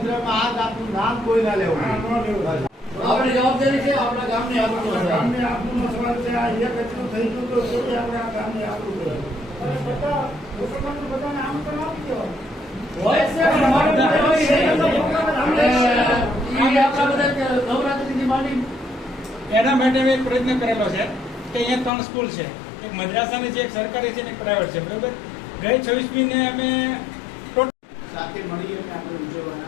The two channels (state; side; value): drops out; right; at 21.9 s